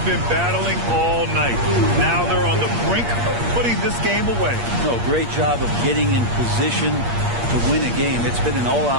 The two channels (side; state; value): left; late; 8.5 ms